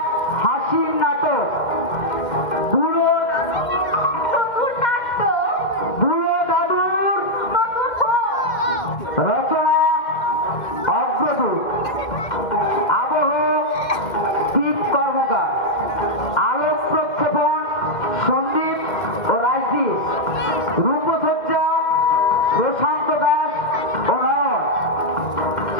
হাসির নাটক বুড়ো দাদুর রচনা অগ্রদূত, আবহ দীপ কর্মকার, আলোক প্রক্ষেপণ সন্দীপ ও রাজদীপ, রূপসজ্জা প্রশান্ত দাস ও নয়ন।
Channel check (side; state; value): right; late; 2.1 ms